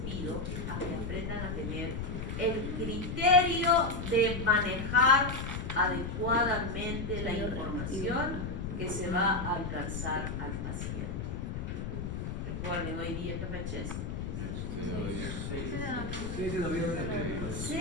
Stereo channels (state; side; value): noise; left; rumble, 4 dB below the sound